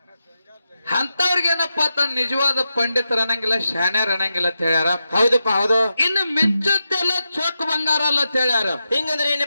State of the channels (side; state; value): both; inverted; correlation -0.88